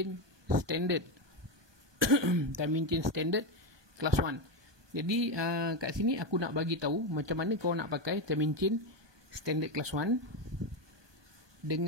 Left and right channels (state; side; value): late; left; 1.2 ms